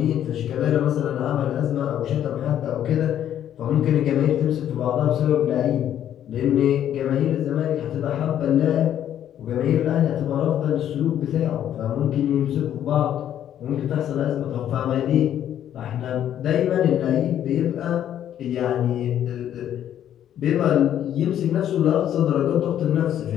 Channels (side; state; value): right; quieter; 10.6 dB